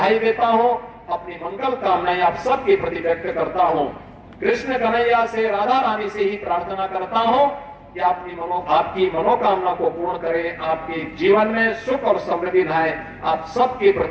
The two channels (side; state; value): both; identical; correlation 1.00